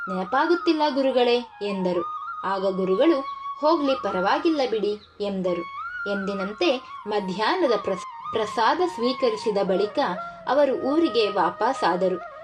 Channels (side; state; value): both; identical; correlation 1.00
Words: ನೆನಪಾಗುತ್ತಿಲ್ಲ ಗುರುಗಳೇ ಎಂದರು. ಆಗ ಗುರುಗಳು, ಹೋಗ್ಲಿ, ಪರವಾಗಿಲ್ಲ ಬಿಡಿ ಎಂದರು. ಎಂದಿನಂತೆ ಮಧ್ಯಾಹ್ನದ ಪ್ರಸಾದ ಸ್ವೀಕರಿಸಿದ ಬಳಿಕ ಅವರು ಊರಿಗೆ ವಾಪಸ್ಸಾದರು.